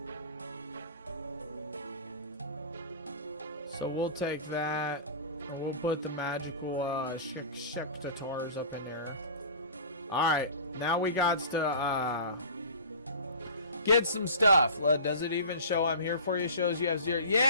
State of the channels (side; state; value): both; inverted; correlation -0.38